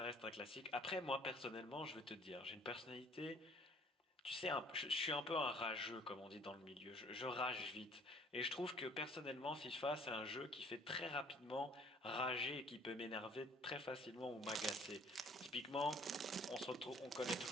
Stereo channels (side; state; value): both; normal; correlation 0.56